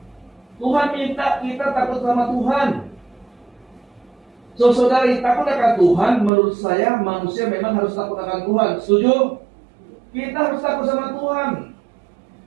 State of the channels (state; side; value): drops out; left; at 6.3 s